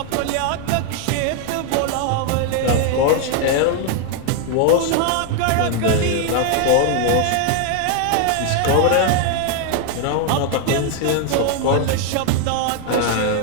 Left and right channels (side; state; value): both; different; correlation 0.01